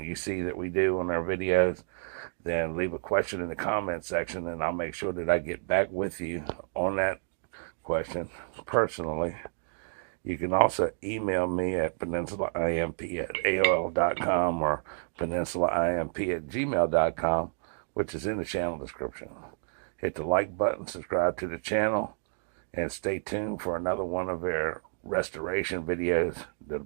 you see that we do on our videos, then leave a question in the comment section, and I'll make sure that I get back with you on that question personally. You can also email me at peninsulaimp@aol.com or peninsulaimp@gmail.com, which is in the channel description. Hit the like button, subscribe to the channel, and stay tuned for another one of our restoration videos that'll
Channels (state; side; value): silent; left; digital silence